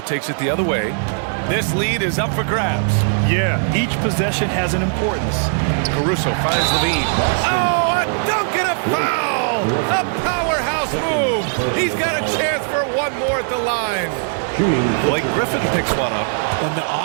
it the other way. This lead is up for grabs. Yeah, each possession has an importance. Caruso finds Levine. Oh, a dunk cross move. He's got a chance for one more at the line. Blake Griffin picks one up. On the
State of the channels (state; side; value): silent; left; 67 dB below the other